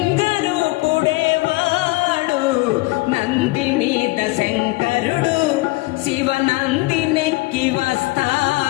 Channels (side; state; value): right; quieter; 22.1 dB